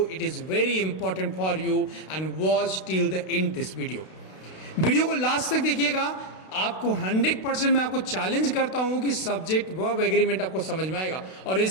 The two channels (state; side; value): late; right; 32 ms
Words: it is very important for you and watch till the end this video। Video को last तक देखिएगा, आपको 100% मैं आपको challenge करता हूं कि subject verb agreement आपको समझ में आएगा। और